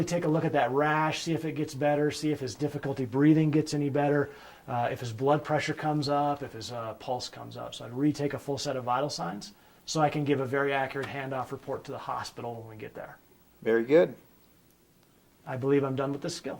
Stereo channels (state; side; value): identical; both; correlation 1.00